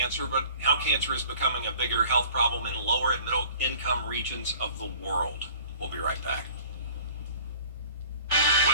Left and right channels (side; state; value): both; inverted; correlation -0.48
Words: but how cancer is becoming a bigger health problem in lower and middle income regions of the world. We'll be right back.